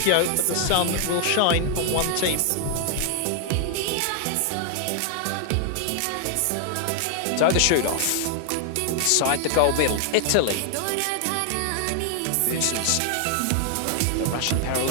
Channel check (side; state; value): both; different; correlation 0.00